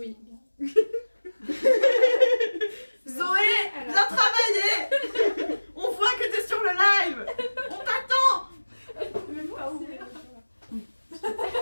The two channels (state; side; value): inverted; both; correlation -1.00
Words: Zoé, viens travailler. On voit que t'es sur le live. On t'attend. Même pas ouvert.